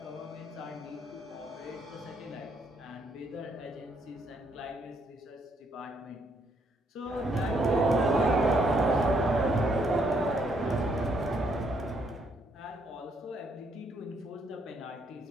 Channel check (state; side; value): normal; both; correlation 0.72